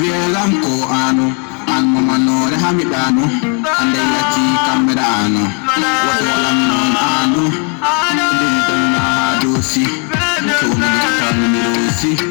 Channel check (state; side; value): quieter; right; 37.6 dB